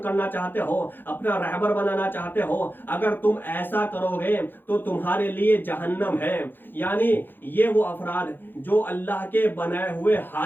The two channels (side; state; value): right; late; 0.095 ms